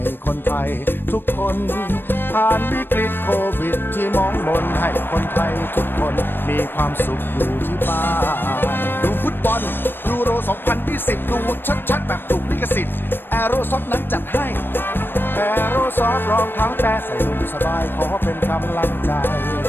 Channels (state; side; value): late; right; 0.098 ms